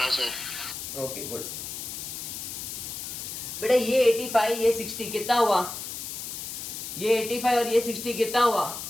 सर। ओके गुड बेटा। ये 85 ये 60 कितना हुआ? ये 85 और ये 60 कितना हुआ?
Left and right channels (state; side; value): noise; left; hiss, 7 dB below the sound